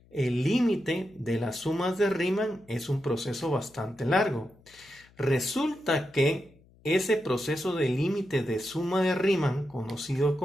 El límite de las sumas de Riemann es un proceso bastante largo. Resulta que ese proceso de límite de suma de Riemann, conocido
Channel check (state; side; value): noise; left; hum, 28 dB below the sound